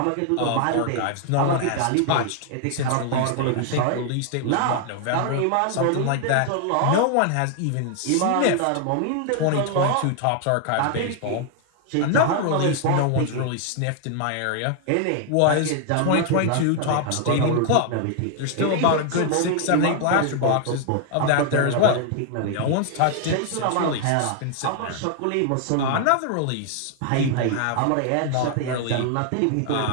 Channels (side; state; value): both; different; correlation 0.00